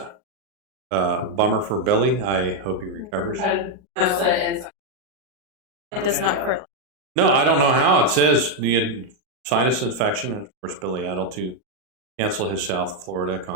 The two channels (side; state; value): left; late; 38 ms